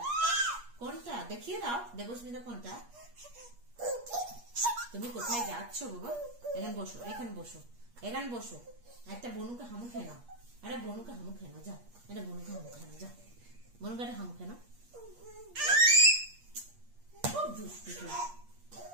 কোনটা দেখিয়ে দাও। দেবস্মিতা কোনটা? তুমি কোথায় যাচ্ছ বাবা? এখানে বসো, এখানে বসো, এখানে বসো। একটা বনুকে হামু খেয়ে নাও। আরে বনুকে হামু খেয়ে নাও, যাও। এটা বনুকে হামু খেয়ে নাও, যাও। বনুকে একটা হামু খেয়ে নাও। খুব দুষ্টু তুই।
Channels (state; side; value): late; left; 8.4 ms